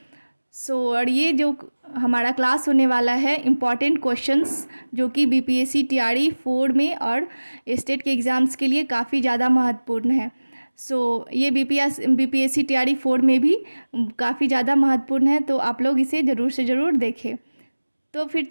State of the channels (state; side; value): inverted; both; correlation -1.00